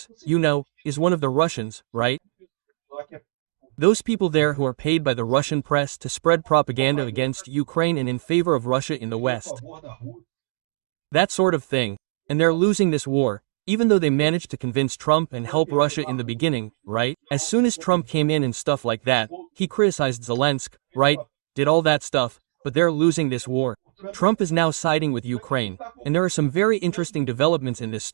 you know, is one of the Russians, right? Those people there who are paid by the Russian press to spread propaganda against Ukraine and in favor of Russia in the West. That sort of thing. And they're losing this war, even though they managed to convince Trump and help Russia in the beginning, right? As soon as Trump came in and stuff like that, he criticized Zelensky, right? Did all that stuff, but they're losing this war. Trump is now siding with Ukraine, and there are some very interesting developments in this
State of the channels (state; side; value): silent; left; digital silence